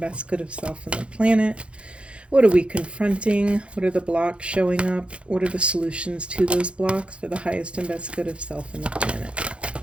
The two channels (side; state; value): left; late; 0.059 ms